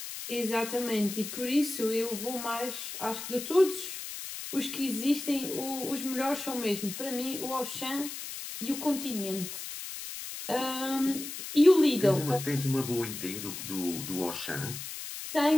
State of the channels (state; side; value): noise; left; hiss, 8 dB below the sound